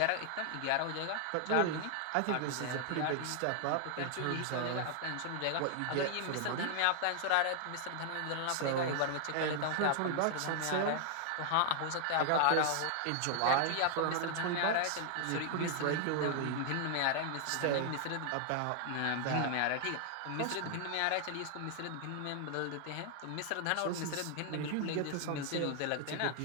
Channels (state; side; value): different; both; correlation 0.00